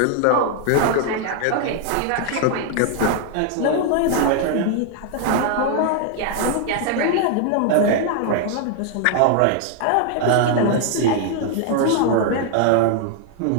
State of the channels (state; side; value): different; both; correlation 0.00